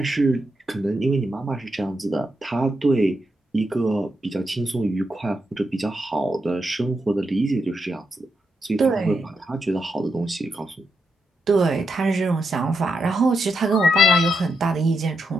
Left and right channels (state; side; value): normal; both; correlation 0.83